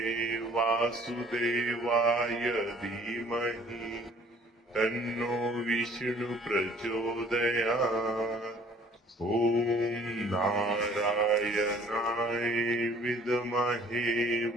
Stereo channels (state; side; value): normal; both; correlation 0.55